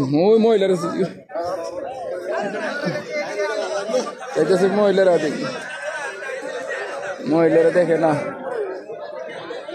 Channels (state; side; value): identical; both; correlation 1.00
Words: ওই মহিলার মহিলারা দেখি, মহিলারা দেখে না।